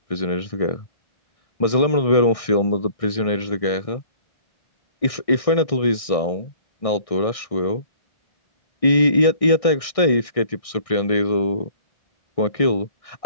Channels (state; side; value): late; right; 1.6 ms